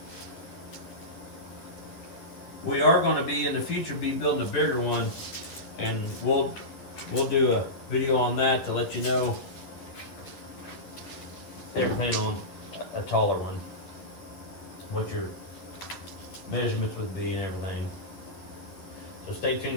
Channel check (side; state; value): right; late; 10 ms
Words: We are going to be in the future building a bigger one, and we'll do a video on that to let you know everything on a taller one, what your measurements would be and everything. So stay